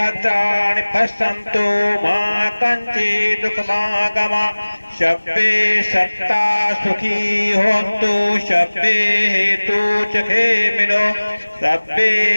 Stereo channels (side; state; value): both; inverted; correlation -1.00